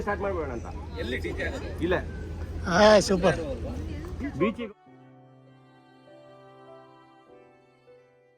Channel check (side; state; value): both; identical; correlation 1.00